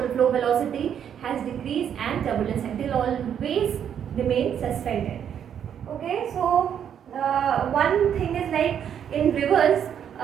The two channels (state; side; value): quieter; left; 8.8 dB